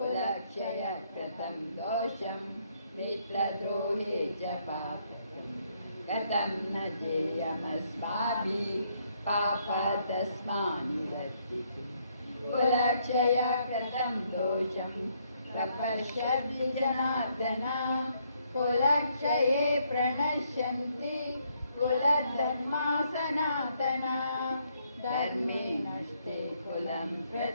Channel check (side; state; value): both; inverted; correlation -0.72